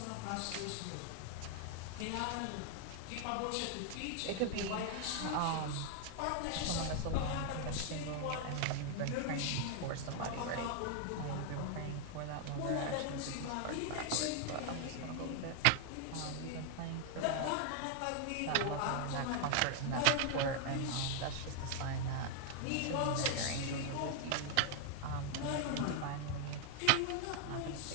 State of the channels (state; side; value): different; both; correlation 0.00